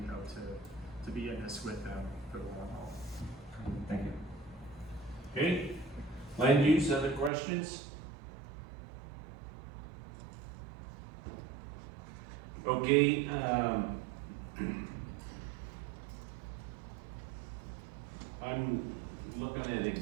hope to be in this with them for the long haul. Thank you. Okay, land use, other questions? Okay, I'm looking at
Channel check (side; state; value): left; drops out; at 7.3 s